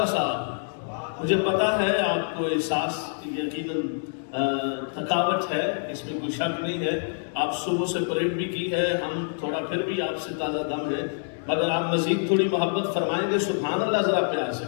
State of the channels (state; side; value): silent; right; digital silence